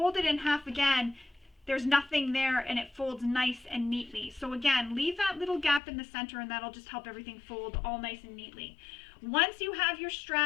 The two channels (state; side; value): drops out; right; at 5.8 s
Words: it in half again, there's nothing there and it folds nice and neatly. So again, leave that little gap in the center and that'll just help everything fold all nice and neatly. Once you have your